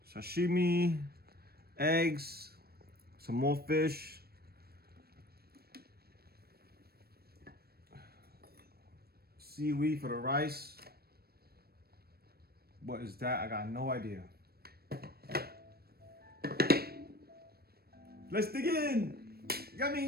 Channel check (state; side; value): late; left; 0.45 ms